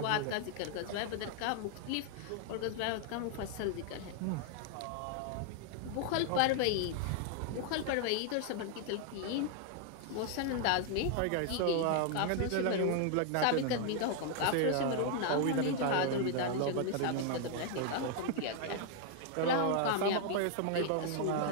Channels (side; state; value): both; different; correlation 0.00